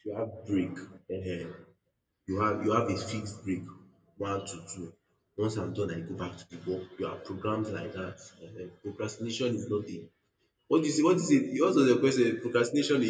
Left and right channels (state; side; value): identical; both; correlation 1.00